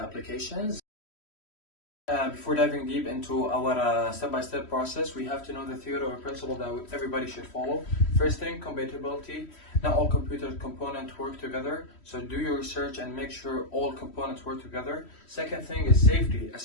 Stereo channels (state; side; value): late; right; 3.1 ms